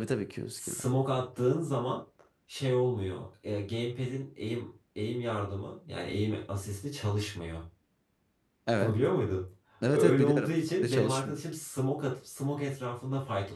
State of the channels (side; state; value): both; identical; correlation 1.00